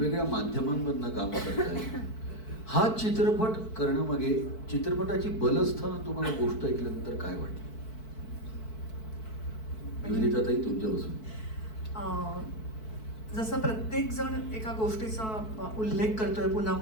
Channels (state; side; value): late; right; 4.6 ms